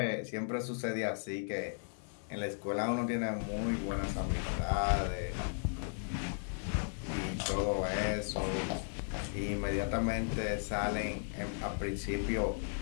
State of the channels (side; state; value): right; silent; digital silence